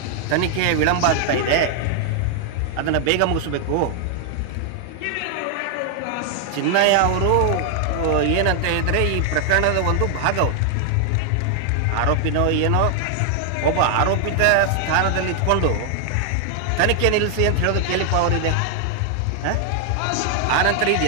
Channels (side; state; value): both; different; correlation 0.00